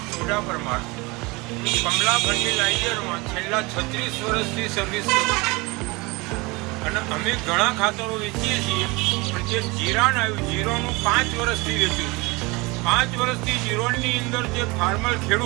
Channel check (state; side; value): quieter; left; 25.0 dB